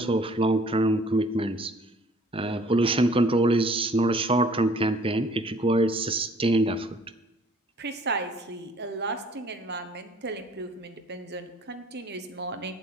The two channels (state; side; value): normal; both; correlation 0.56